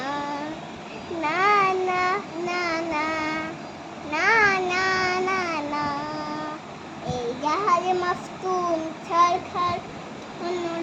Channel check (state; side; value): identical; both; correlation 1.00